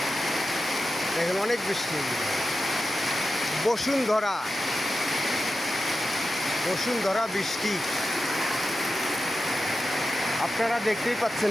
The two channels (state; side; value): normal; both; correlation 0.91